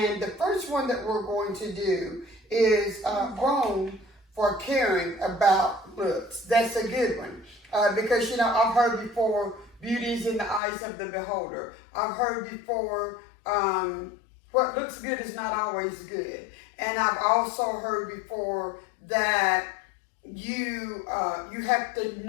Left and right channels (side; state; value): right; drops out; at 10.6 s